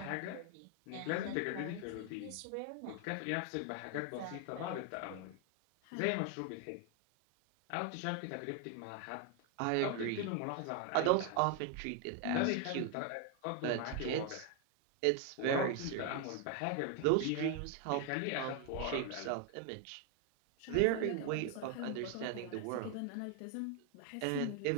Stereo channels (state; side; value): different; both; correlation 0.00